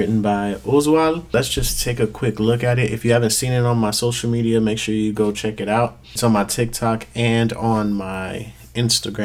by Oswald. Let's just take a quick look at it. If you haven't seen it on my social media, make sure you go check it out. It's on my TikTok and on my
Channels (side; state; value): both; identical; correlation 1.00